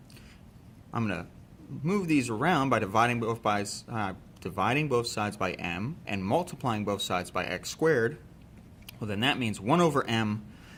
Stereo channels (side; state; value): both; identical; correlation 1.00